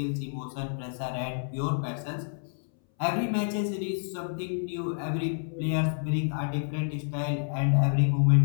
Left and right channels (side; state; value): right; silent; 59 dB below the other